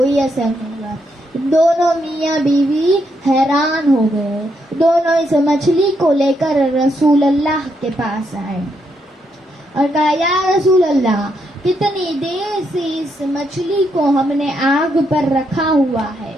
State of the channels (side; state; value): both; normal; correlation 0.78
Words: اثر نہیں ہوا۔ دونوں میاں بیوی حیران ہو گئے۔ دونوں اس مچھلی کو لے کر رسول اللہ کے پاس آئے اور کہا، یا رسول اللہ، کتنی دیر سے اس مچھلی کو ہم نے آگ پر رکھا ہوا ہے،